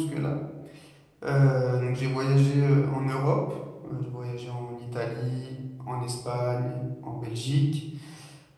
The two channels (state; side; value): identical; both; correlation 1.00